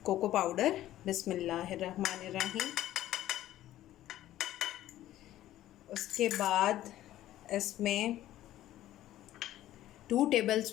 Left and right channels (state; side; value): quieter; right; 13.8 dB